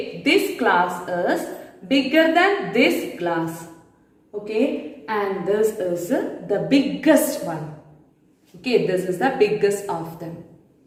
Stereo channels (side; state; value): both; identical; correlation 1.00